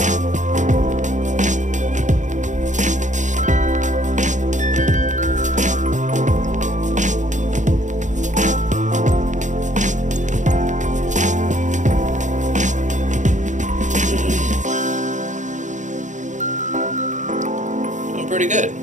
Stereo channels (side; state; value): left; late; 0.36 ms